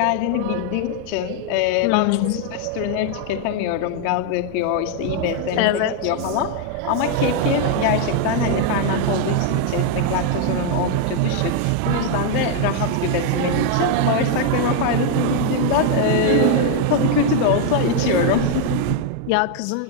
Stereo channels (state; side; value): different; both; correlation 0.00